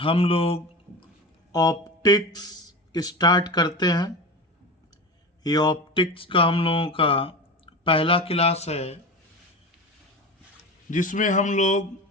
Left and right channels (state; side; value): normal; both; correlation 0.28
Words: लोग ऑप्टिक्स स्टार्ट करते हैं। ये ऑप्टिक्स का हम लोगों का पहला क्लास है, जिसमें हम